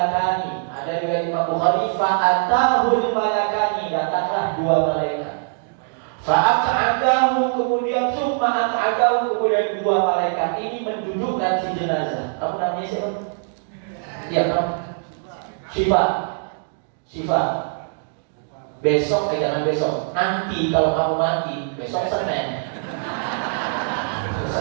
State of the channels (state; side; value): silent; left; digital silence